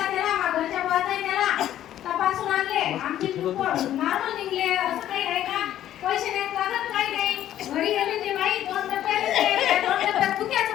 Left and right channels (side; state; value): right; quieter; 12.0 dB